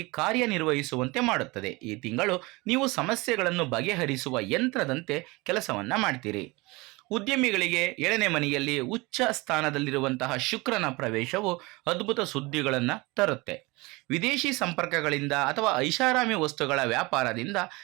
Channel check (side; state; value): left; quieter; 24.0 dB